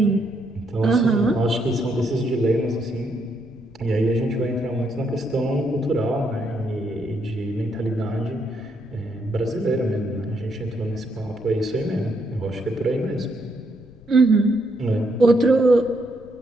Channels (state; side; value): noise; left; rumble, 24 dB below the sound